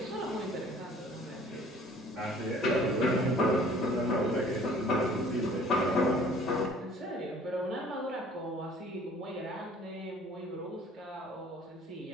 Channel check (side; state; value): both; normal; correlation 0.53